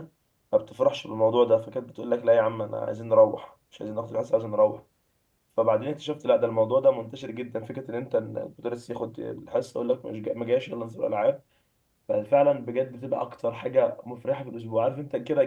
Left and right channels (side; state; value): both; identical; correlation 1.00